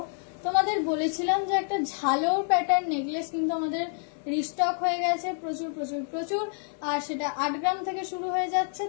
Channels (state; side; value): silent; right; 59 dB below the other